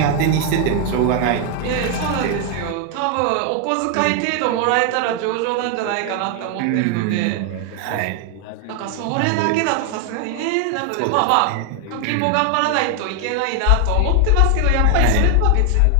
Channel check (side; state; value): both; different; correlation 0.00